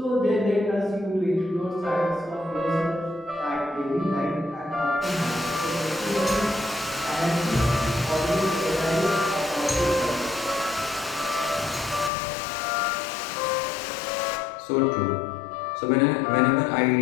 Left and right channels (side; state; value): right; drops out; at 12.1 s